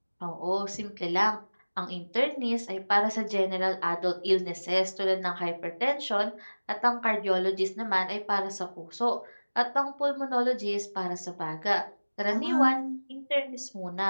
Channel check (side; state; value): both; inverted; correlation -1.00